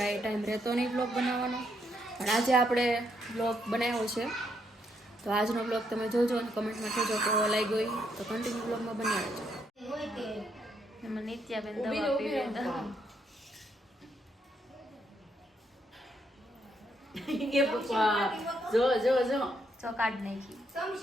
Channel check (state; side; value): normal; both; correlation 0.75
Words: ટાઈમ રહેતો નહીં બ્લોગ બનાવવાનો. પણ આજે આપણે બ્લોગ બનાવ્યો છે તો આજનો બ્લોગ તમે જોજો અને કમેન્ટમાં કહેજો કેવો લાગ્યો તો કન્ટિન્યુ બ્લોગમાં બની રહેજો. એમાં નિત્યાબેન દવા પીવે જો કાઢ નાખી